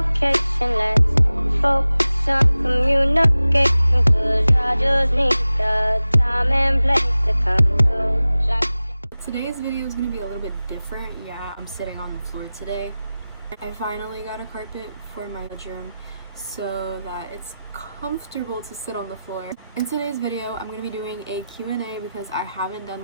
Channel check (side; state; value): both; inverted; correlation -0.95